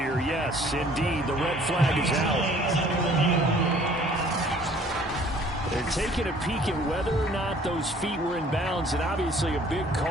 Yes, indeed, the red flag is out. They're taking a peek at whether or not those feet were in bounds, and obviously a big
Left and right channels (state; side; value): normal; both; correlation 0.55